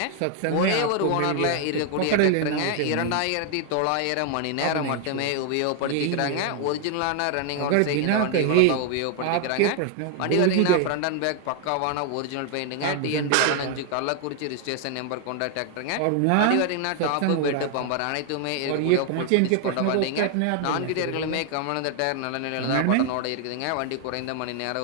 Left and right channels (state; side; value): different; both; correlation 0.00